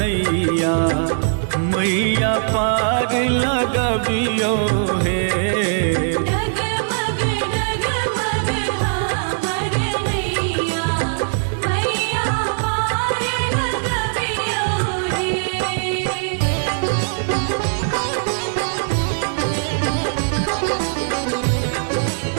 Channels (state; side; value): silent; left; digital silence